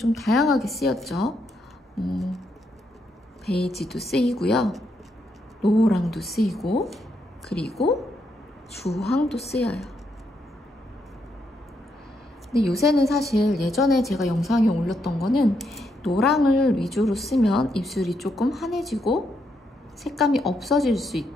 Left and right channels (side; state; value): both; normal; correlation 0.78